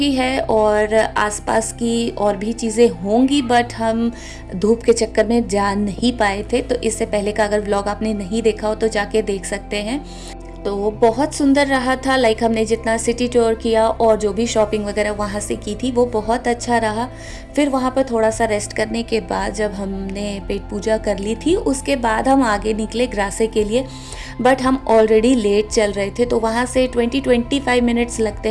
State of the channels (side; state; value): both; identical; correlation 1.00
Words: है और आसपास की और भी चीज़ें होंगी, बट हम धूप के चक्कर में जा नहीं पाए थे। तो इससे पहले का अगर व्लॉग आपने नहीं देखा हो तो जाके देख सकते हैं। तो बहुत सुंदर रहा था। हमने जितना सिटी टूर किया और जो भी शॉपिंग वगैरह वहाँ से की थी वो बहुत अच्छा रहा। फिर वहाँ पर थोड़ा सा रेस्ट करने के बाद जब हमने पेट पूजा कर ली थी, उसके बाद हम आगे निकले ग्रासे के लिए। बट हम ऑलरेडी लेट चल रहे थे, तो वहाँ से 20-25 मिनट्स